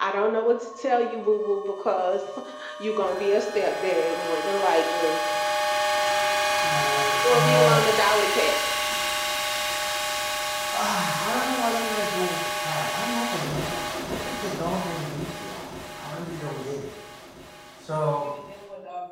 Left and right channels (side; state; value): both; identical; correlation 1.00